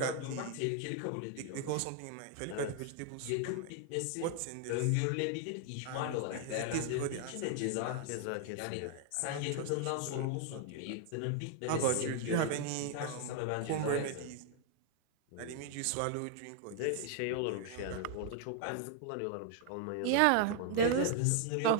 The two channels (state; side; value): different; both; correlation 0.00